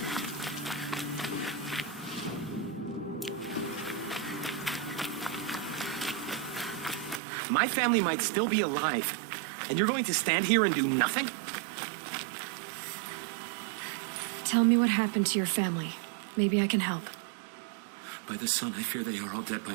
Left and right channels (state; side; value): drops out; left; at 7.2 s